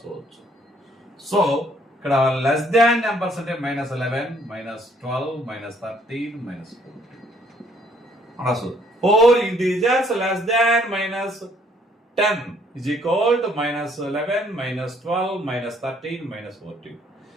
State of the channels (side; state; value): both; normal; correlation 0.64